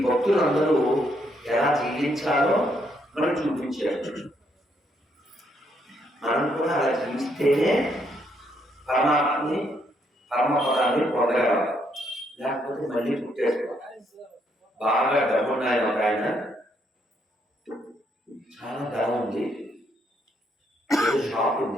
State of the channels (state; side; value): normal; both; correlation 0.74